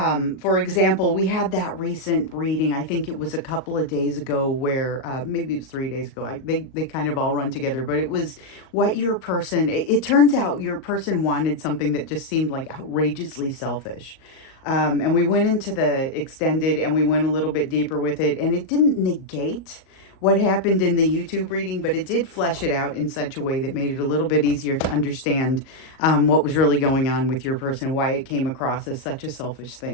example, we had that recent reading, I think it was a couple of days ago, where, maybe it was 3 days ago. They kind of all run together, but it was what your person, it turns out your person wanted something that just seemed like outrageously selfish. And we went into the extended, and we went a little bit deeper with it, and it didn't negate what happened in the YouTube reading, but it did flesh it out in such a way that made it a little bit easier to understand what was really going on with your person, why it came across as such a selfish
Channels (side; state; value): right; late; 38 ms